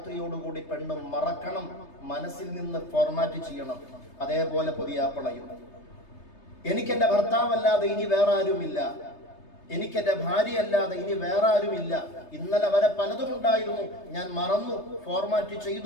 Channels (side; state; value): right; late; 3.3 ms